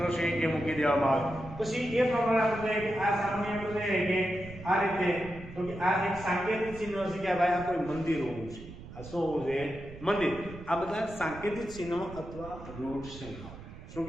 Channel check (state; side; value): noise; right; rumble, 14 dB below the sound